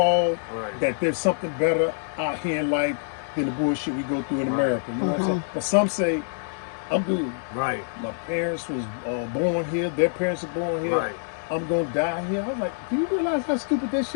that there's something better out here in life than the bullshit we go through in America. You know what I'm saying? But some say, I'm good. Right. My parents was born here. Their parents were born here. Right. I'm going to die here. I was like, do you realize how stupid that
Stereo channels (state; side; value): silent; right; digital silence